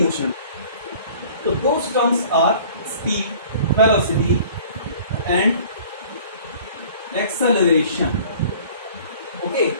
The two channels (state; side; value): inverted; both; correlation -0.49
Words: motion. So those terms are speed, velocity and acceleration. Okay,